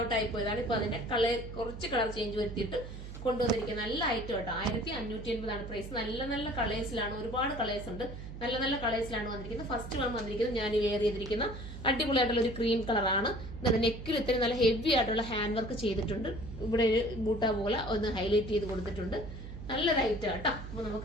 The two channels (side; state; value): right; noise; hum, 10 dB below the sound